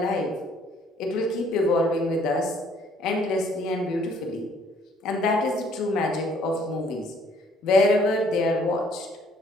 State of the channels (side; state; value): both; normal; correlation 0.62